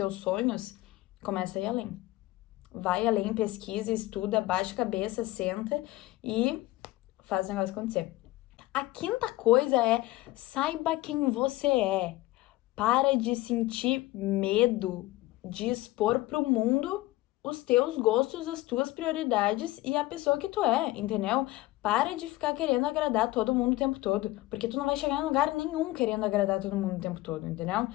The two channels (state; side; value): quieter; right; 18.1 dB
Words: sonhos, começa a ir além. Vai além, pesquisa, estuda, baixa a cabeça, senta e faz o negócio acontecer. A quinta coisa é, saiba quem você é. Para de sentir medo de expor pro mundo os teus gostos, as tuas prioridades e a pessoa que tu é, entendeu? Para de ficar querendo agradar todo mundo o tempo todo, porque tu não vai chegar em lugar nenhum querendo agradar todo mundo o tempo todo, entendeu?